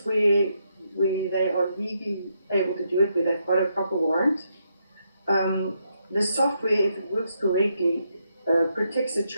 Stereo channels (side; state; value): both; inverted; correlation -0.79